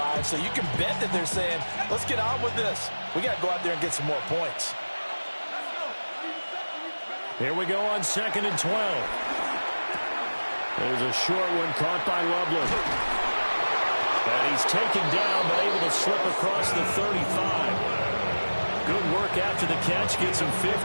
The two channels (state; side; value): inverted; both; correlation -1.00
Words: So you can bet that they're saying, let's get on with this. We got to go out there and get some more points. Here we go on second and 12. There's a short one caught by Loveland. And he's taken down, but able to slip across the 35. Good work after the catch. Gets him